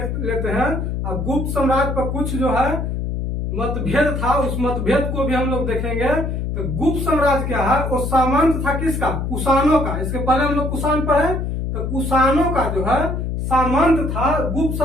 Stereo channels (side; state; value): left; noise; hum, 2 dB below the sound